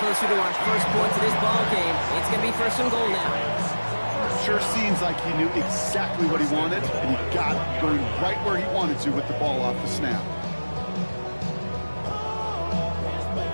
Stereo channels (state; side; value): inverted; both; correlation -1.00